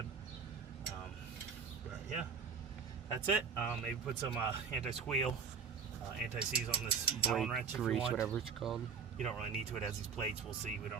But yeah, that's it. Maybe put some anti-squeal, anti-seize on this Allen wrench if you want. Whatever it's called. You don't really need to. It has these plates. We'll see. We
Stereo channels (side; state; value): left; quieter; 6.1 dB